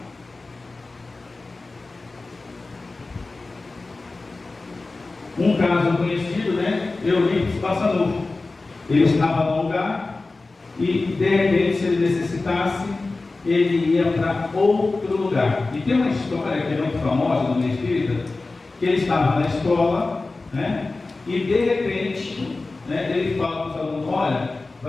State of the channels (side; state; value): right; quieter; 3.5 dB